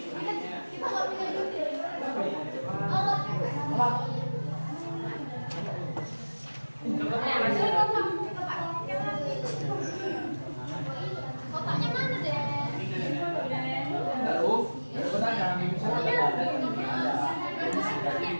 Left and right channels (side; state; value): both; inverted; correlation -1.00